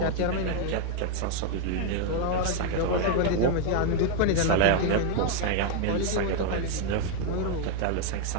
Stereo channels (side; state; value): both; different; correlation 0.01